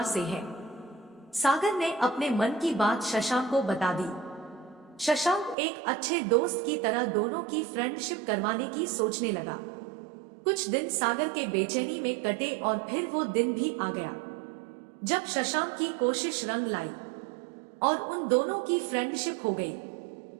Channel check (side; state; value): left; drops out; at 5.6 s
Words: से है। सागर ने अपने मन की बात शशांक को बता दी। शशांक एक अच्छे दोस्त की तरह दोनों की फ्रेंडशिप करवाने की सोचने लगा। कुछ दिन सागर के बेचैनी में कटे और फिर वो दिन भी आ गया जब शशांक की कोशिश रंग लाई और उन दोनों की फ्रेंडशिप हो गई।